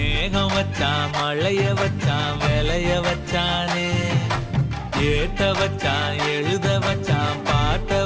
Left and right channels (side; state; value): both; identical; correlation 1.00